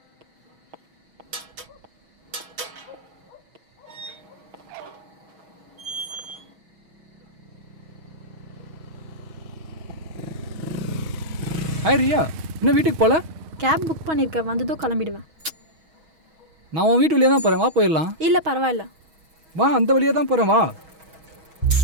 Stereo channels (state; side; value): late; left; 6.3 ms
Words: ஹாய் ரியா, இன்னும் வீட்டுக்கு போகல? கேப் புக் பண்ணியிருக்கேன், வந்ததும் கிளம்பிடுவேன். நான் உன் வீட்டு வழியாக தான் போகிறேன், வா போயிடலாம். இல்லை பரவாயில்ல, வா, அந்த வழியாக தான் போகிறேன், வா.